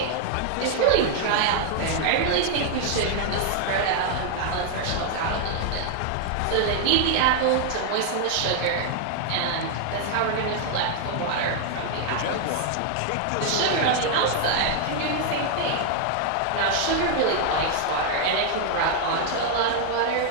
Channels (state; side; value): different; both; correlation 0.00